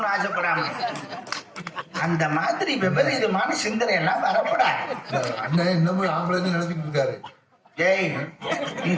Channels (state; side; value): identical; both; correlation 1.00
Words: ஆசைப்படாம அந்த மாதிரி விபரீதமான சிந்தனை எல்லாம் வரப்படாது. அண்ணன் இன்னமும் ஆம்பளைன்னு நினைச்சிட்டு இருக்காரு. ஏய், நீ